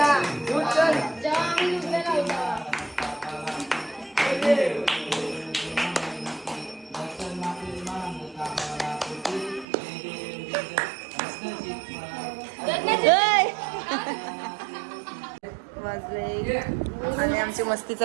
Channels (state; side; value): drops out; left; at 9.7 s